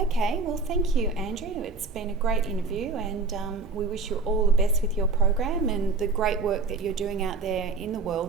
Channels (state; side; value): quieter; left; 3.9 dB